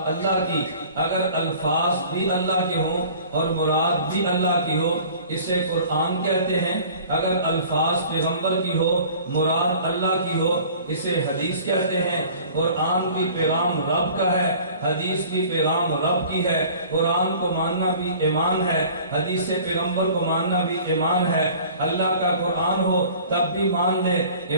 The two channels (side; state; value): both; inverted; correlation -0.47